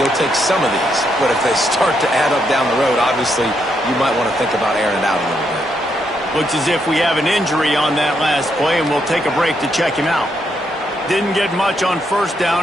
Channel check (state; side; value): normal; both; correlation 0.78